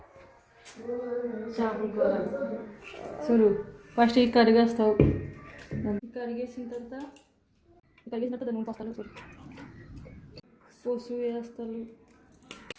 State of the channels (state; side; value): identical; both; correlation 1.00